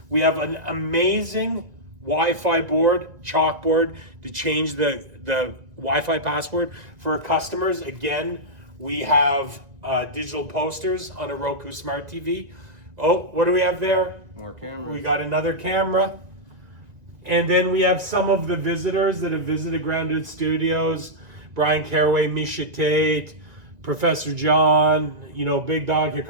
We have an amazing Wi-Fi board, chalkboard to change the Wi-Fi password for our customers. Again, we have digital posters on a Roku Smart TV. Oh, what do we have there? More cameras. We got another camera. And then we have some of the visitors that have visited Grounded Studios. Brian Caraway, Misha Tate, Professor John, you know, Big Dog,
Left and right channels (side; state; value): left; late; 2.0 ms